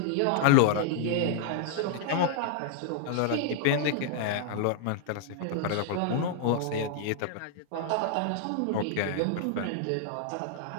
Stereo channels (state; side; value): different; both; correlation -0.01